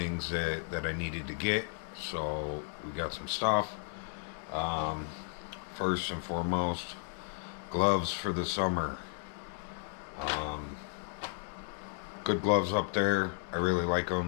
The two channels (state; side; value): silent; right; digital silence